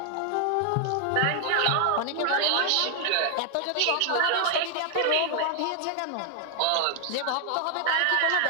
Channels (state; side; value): different; both; correlation 0.00